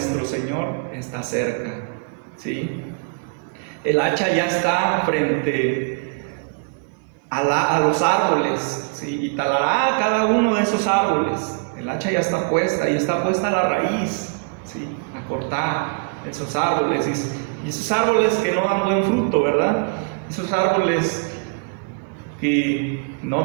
Señor está cerca, ¿sí? El hacha ya está frente a los árboles, ¿sí? Y talará cada uno de esos árboles. El hacha ya está puesta, y está puesta la raíz, ¿sí?, a cortar esos árboles. Y esos árboles que no dan buen fruto, ¿verdad? Esos árboles que no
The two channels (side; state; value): left; quieter; 35.6 dB